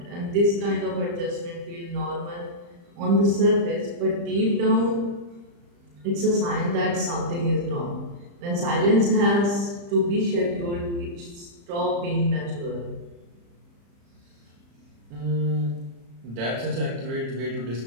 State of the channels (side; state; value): left; late; 35 ms